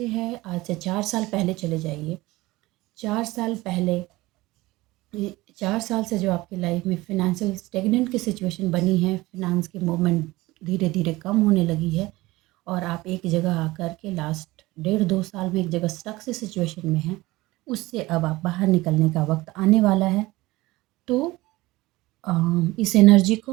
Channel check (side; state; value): left; quieter; 19.7 dB